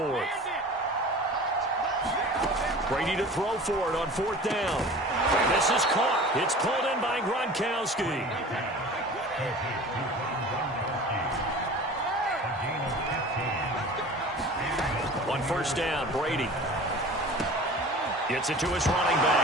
Brady to throw for it on 4th down. This is caught. It's pulled in by Gronkowski. On 1st down, Brady gets it to his running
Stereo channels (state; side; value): normal; both; correlation 0.40